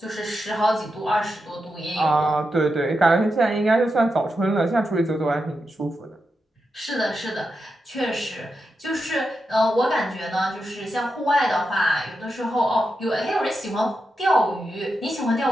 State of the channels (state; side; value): normal; both; correlation 0.87